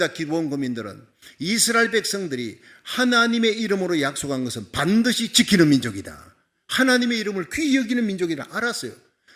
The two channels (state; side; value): identical; both; correlation 1.00